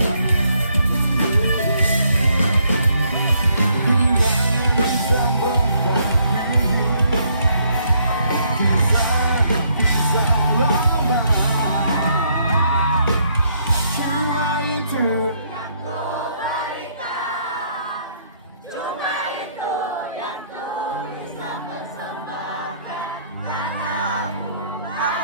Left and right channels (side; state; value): both; inverted; correlation -0.69